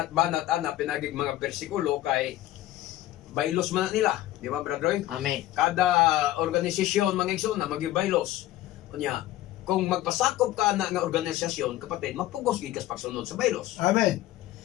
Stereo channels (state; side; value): quieter; right; 14.9 dB